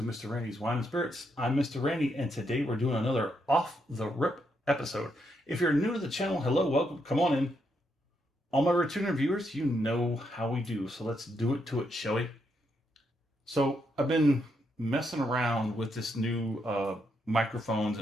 Mr. Randy's Wine and Spirits. I'm Mr. Randy and today we're doing another off the rip episode. If you're new to the channel, hello, welcome, come on in. All my returning viewers, you know how we do, so let's do it to it, shall we? So I've been messing around with this new microphones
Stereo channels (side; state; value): both; normal; correlation 0.79